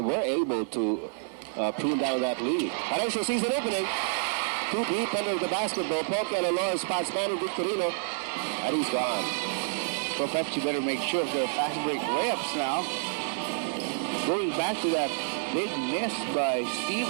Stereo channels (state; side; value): silent; left; 59 dB below the other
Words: able to prune down that lead. Harancho sees an opening. Too deep under the basketball. Poke and Alora spots Manny Victorino, and he's gone. So Pepsi better make sure of their fast break layups now. Going back to that big miss by